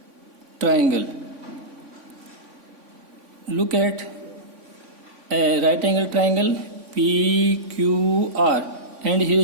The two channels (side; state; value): left; late; 3.5 ms